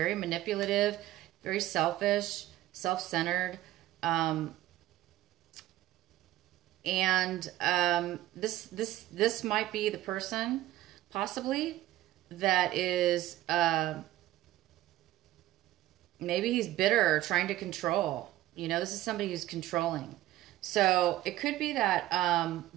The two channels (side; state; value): left; quieter; 15.0 dB